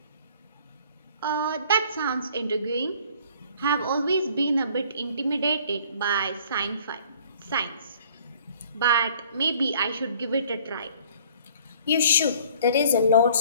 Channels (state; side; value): inverted; both; correlation -0.54